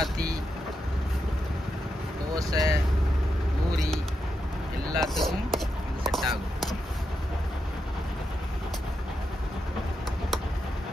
தோசை, பூரி எல்லாத்துக்கும் இது செட் ஆகும்.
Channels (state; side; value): normal; both; correlation 0.85